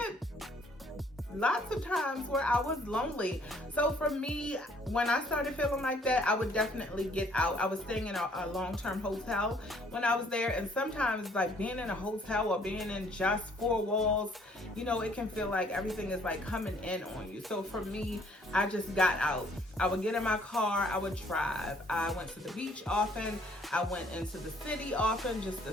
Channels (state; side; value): normal; both; correlation 0.61